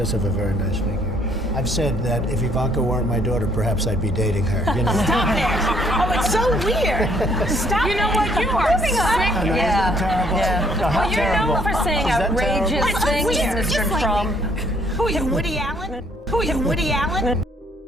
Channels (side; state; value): both; normal; correlation 0.65